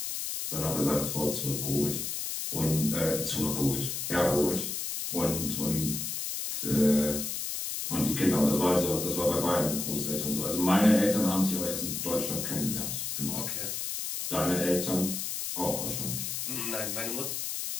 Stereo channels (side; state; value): left; noise; hiss, 3 dB below the sound